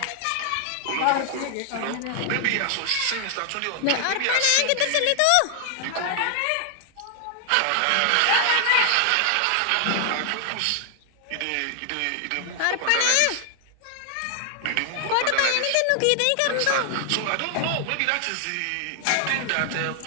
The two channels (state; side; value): different; both; correlation 0.00